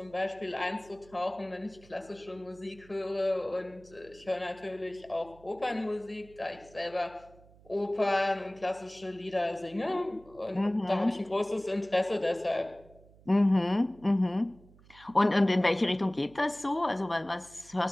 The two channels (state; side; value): noise; right; hum, 25 dB below the sound